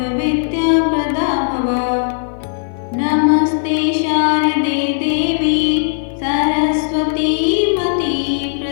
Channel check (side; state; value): right; silent; 58 dB below the other